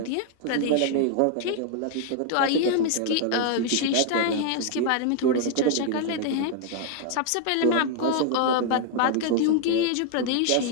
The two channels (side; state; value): both; different; correlation 0.00